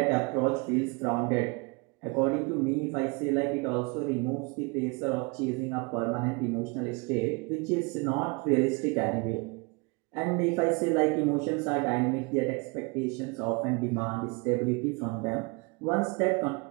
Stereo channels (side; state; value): left; quieter; 29.7 dB